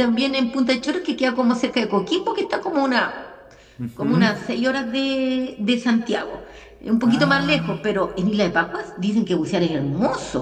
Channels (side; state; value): both; identical; correlation 1.00